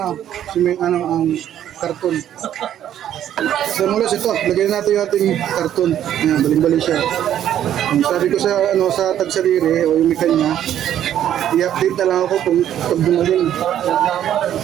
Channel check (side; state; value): left; quieter; 10.9 dB